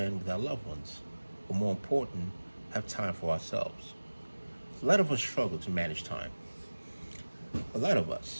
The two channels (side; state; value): both; inverted; correlation -1.00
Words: with our loved ones, or more important, have time for ourselves. A lot of us struggle to manage time. A lot of